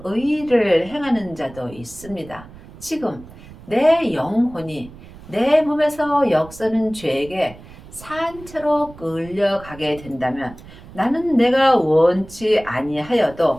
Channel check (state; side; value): noise; right; rumble, 19 dB below the sound